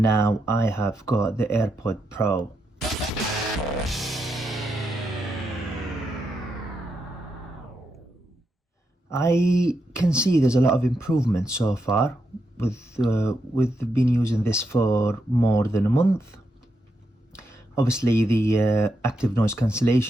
now I have got the AirPod Pro. I can see there's a lot of improvement so far with been using this for more than a month. Obviously the active noise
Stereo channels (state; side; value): normal; both; correlation 0.83